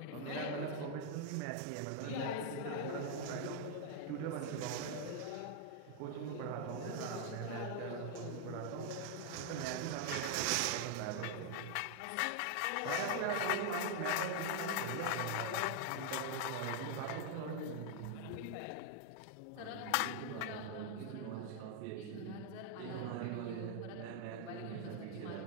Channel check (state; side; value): different; both; correlation 0.00